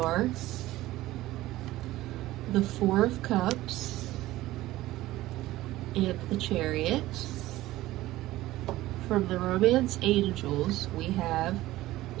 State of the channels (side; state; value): left; quieter; 16.5 dB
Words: the Four of Cups, and the Chariot. From the Romance Angels, we have